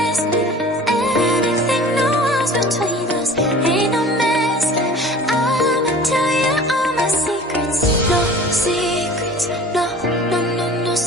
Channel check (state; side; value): normal; both; correlation 0.43